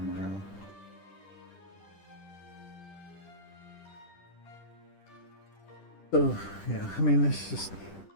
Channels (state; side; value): late; right; 10 ms